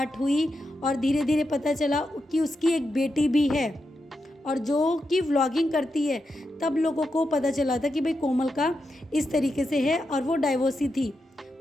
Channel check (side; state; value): both; normal; correlation 0.86